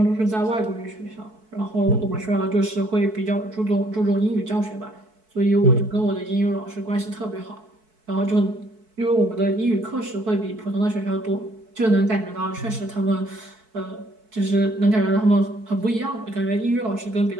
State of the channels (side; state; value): left; late; 4.6 ms